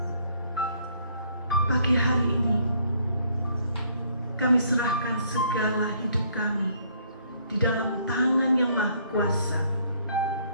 Pagi hari ini kami serahkan segala hidup kami di dalam tangan yang Maha Kuasa.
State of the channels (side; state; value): both; inverted; correlation -0.65